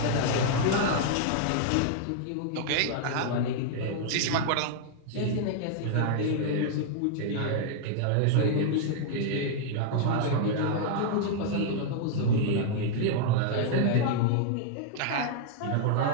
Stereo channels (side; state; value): both; different; correlation 0.00